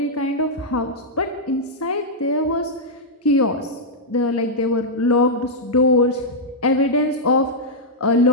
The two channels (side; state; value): both; normal; correlation -0.06